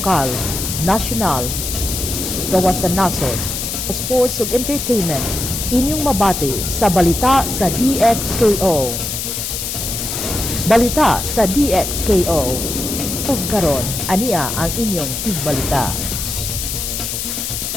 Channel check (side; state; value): left; noise; hiss, 4 dB below the sound